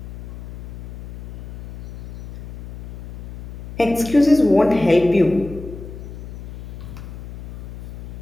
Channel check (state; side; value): noise; left; hum, 14 dB below the sound